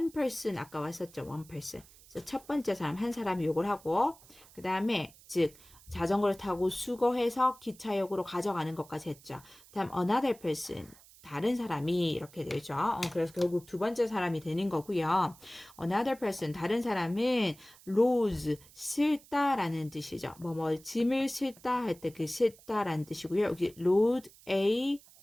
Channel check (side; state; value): right; noise; hiss, 24 dB below the sound